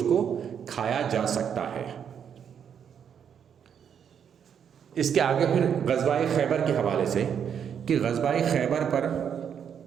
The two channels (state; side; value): quieter; left; 8.0 dB